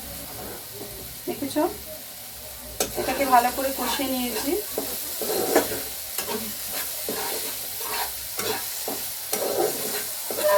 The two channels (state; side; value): identical; both; correlation 1.00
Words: দেখেছো, এটাকে ভালো করে কষিয়ে নিয়েছি।